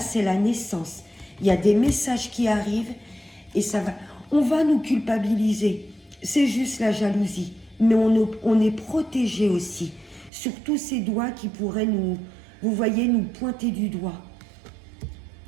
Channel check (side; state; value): left; drops out; at 10.3 s